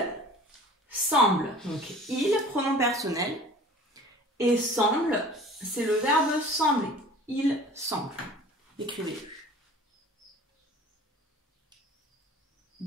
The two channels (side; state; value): both; normal; correlation 0.45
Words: semble. Donc, il, pronom personnel. Et semble, c'est le verbe sembler. Il semble. Écrivez-le.